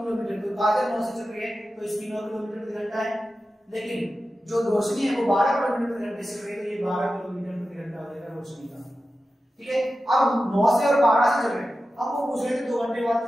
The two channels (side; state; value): both; normal; correlation 0.93